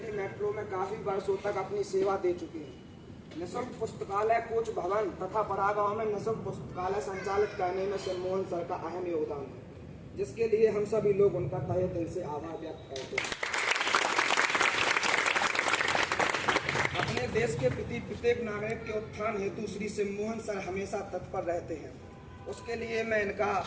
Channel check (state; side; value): identical; both; correlation 1.00